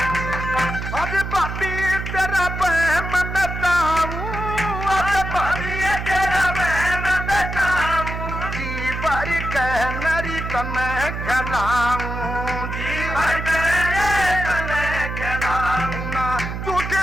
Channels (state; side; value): noise; right; hum, 5 dB below the sound